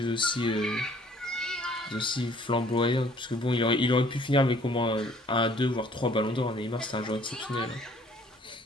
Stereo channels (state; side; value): normal; both; correlation 0.57